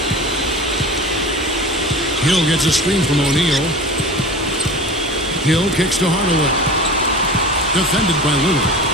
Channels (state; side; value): normal; both; correlation 0.35